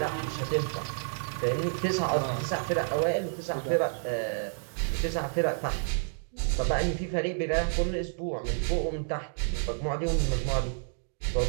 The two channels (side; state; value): left; silent; digital silence